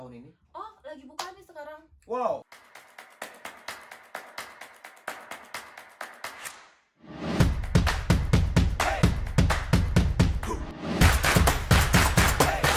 ini? Oh, lagi buka nih sekarang. Wow.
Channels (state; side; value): identical; both; correlation 1.00